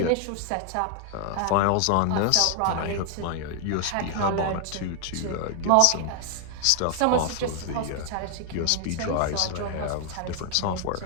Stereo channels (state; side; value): different; both; correlation 0.00